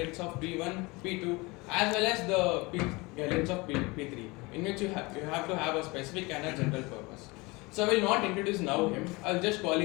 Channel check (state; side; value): quieter; right; 24.7 dB